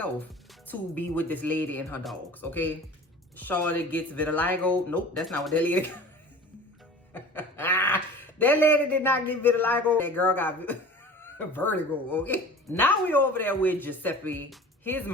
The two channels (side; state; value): both; normal; correlation 0.40